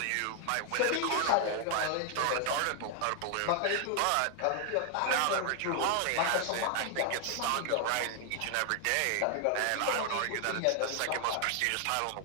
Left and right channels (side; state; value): both; different; correlation 0.00